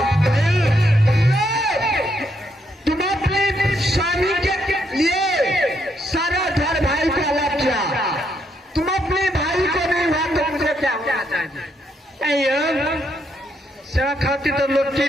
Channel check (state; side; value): normal; both; correlation 0.76